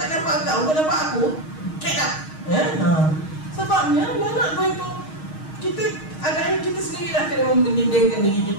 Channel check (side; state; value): right; late; 6.4 ms